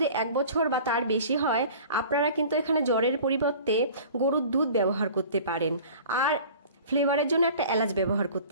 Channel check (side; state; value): both; inverted; correlation -0.44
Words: 1 বছর বা তার বেশি হয়, আপনারা কিন্তু এখানে জ্বরের পরিবর্তে গরুর দুধ ব্যবহার করতে পারেন, আর ফ্লেভারের জন্য একটা এলাচ ব্যবহার